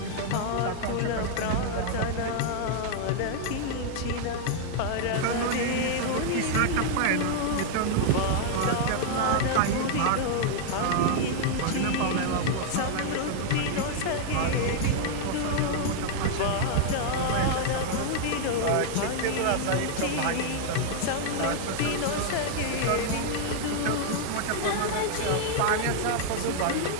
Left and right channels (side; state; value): both; different; correlation 0.00